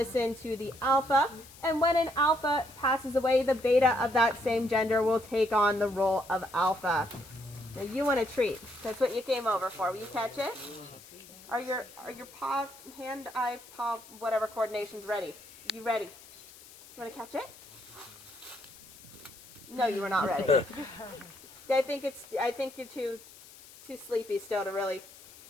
to the alpha. And when an alpha passes away, the beta of that same gender will take on the role of alpha. Now you want a treat. That's what you came over for. Will you catch it? Are your paw, hand, eye, paw, whatever coordinations ready? You ready? You want to catch it? No, you were not ready. I think you're too sleepy still to really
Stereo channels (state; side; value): noise; left; hiss, 20 dB below the sound